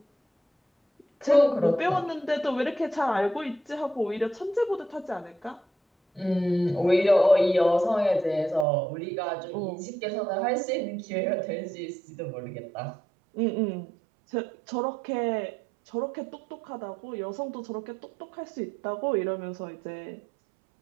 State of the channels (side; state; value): left; drops out; at 8.7 s